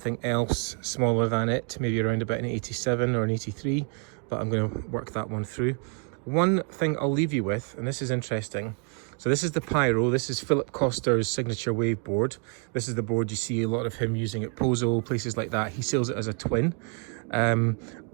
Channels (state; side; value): quieter; left; 38.6 dB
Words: else smaller than it, maybe around about an 87 or an 83, but I'm going to work that one through. One thing I'll leave you with, and this is interesting. So this is the Pyro. This is Philip Coster's signature wave board. This is the board you see a lot of him using at Pozo, places like that. He sells it as a twin. I